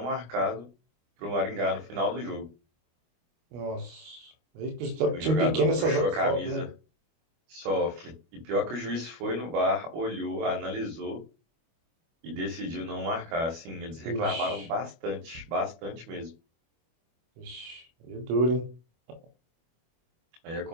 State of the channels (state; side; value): late; left; 25 ms